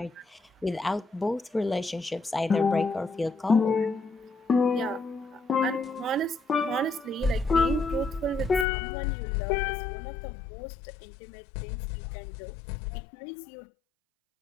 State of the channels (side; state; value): right; drops out; at 8.7 s